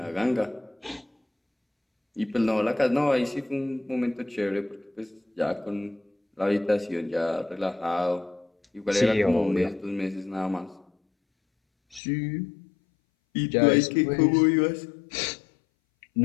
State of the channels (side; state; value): right; drops out; at 12.0 s